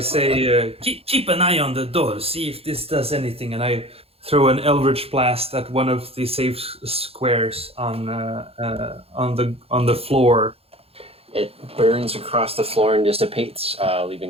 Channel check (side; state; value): left; late; 0.28 ms